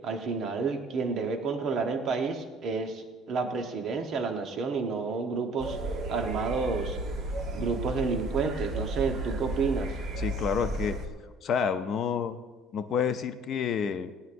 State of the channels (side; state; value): both; normal; correlation 0.52